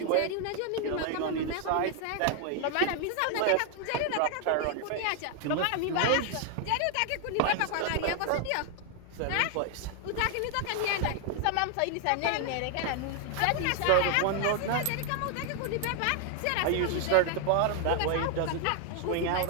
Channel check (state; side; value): different; both; correlation 0.00